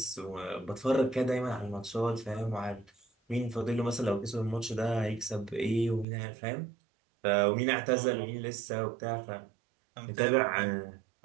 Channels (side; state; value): left; drops out; at 6.1 s